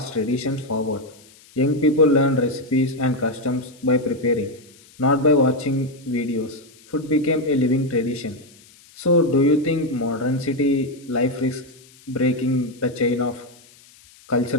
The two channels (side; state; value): left; noise; hiss, 26 dB below the sound